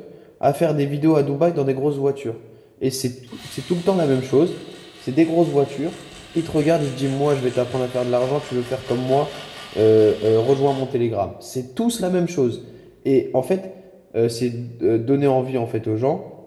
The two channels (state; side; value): identical; both; correlation 1.00